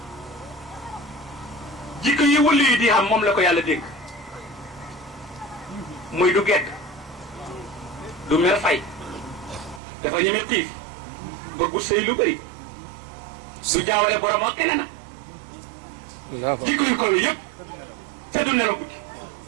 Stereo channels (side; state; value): left; drops out; at 9.8 s